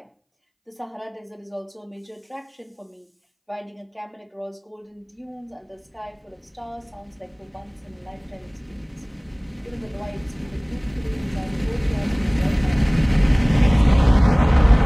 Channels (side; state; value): both; identical; correlation 1.00